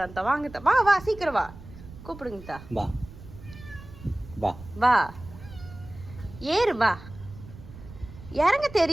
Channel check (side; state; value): right; noise; rumble, 16 dB below the sound